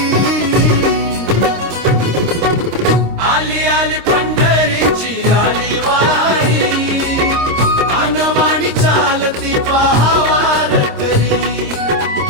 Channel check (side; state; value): left; late; 26 ms